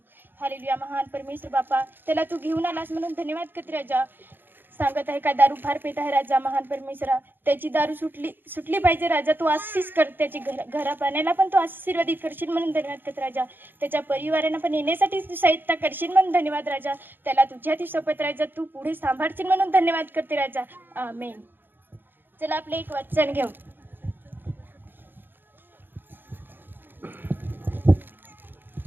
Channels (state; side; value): late; left; 0.096 ms